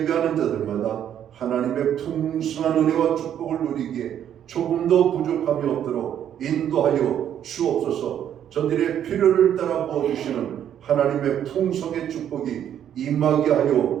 자들마다 하나님의 풍성한 은혜와 축복을 누리기에 조금도 부족함이 없도록 인도하여 주옵소서. 저들의 필요를 따라 부어주시는 하나님의 풍성의 축복이 임하게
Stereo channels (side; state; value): left; quieter; 9.9 dB